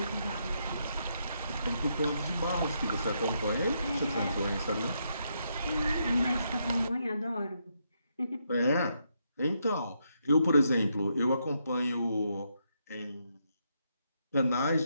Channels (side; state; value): both; inverted; correlation -0.79